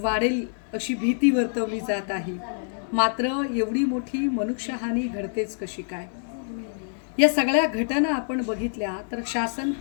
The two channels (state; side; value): silent; right; 60 dB below the other